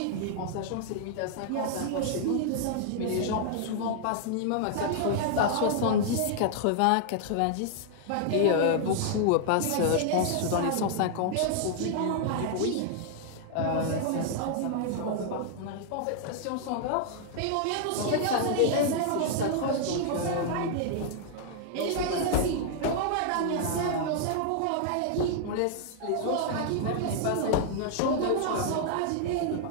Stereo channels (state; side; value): different; both; correlation -0.01